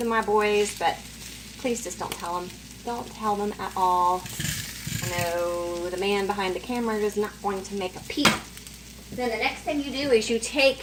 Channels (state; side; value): identical; both; correlation 1.00